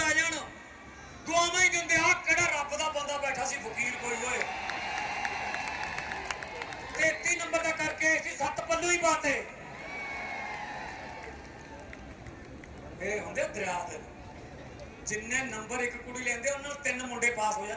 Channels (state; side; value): identical; both; correlation 1.00